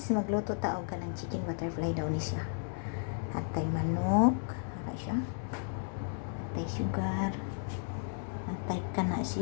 Magluto taog ka ng chicken butterfly daw ni siya. Hatay manok, hara siya. Hatay sugar. Hatay kana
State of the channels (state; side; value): silent; right; digital silence